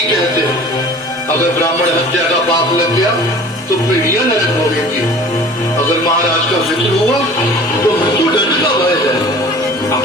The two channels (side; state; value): both; normal; correlation 0.44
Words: कहते हैं, अगर ब्राह्मण हत्या का पाप लग गया तो पीढ़ियां नरक भोगेंगी। अगर महाराज का मित्र हुआ तो मृत्यु दंड का भय है।